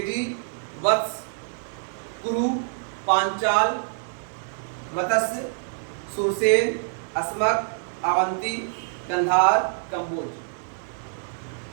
वत्स, कुरु, पांचाल, मत्स्य, सुरसेन, अस्मक, अवंती, कंधार, कंबोज।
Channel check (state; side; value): silent; left; digital silence